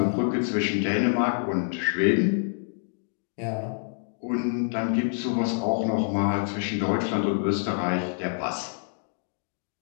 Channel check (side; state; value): right; silent; digital silence